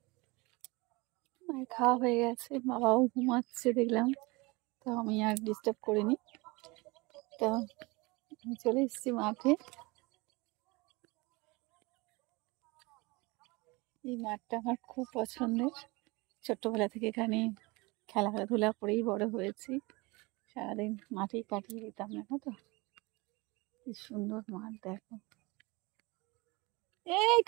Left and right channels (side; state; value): left; quieter; 24.9 dB